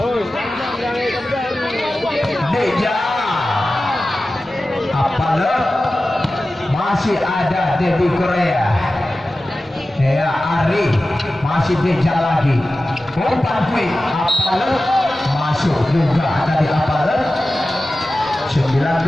Deja Apalagi masih ada Debbie Korea. Ya Ari masih dikejar lagi. Umpan quick Apalet masuk juga dari Apalet.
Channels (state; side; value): normal; both; correlation 0.95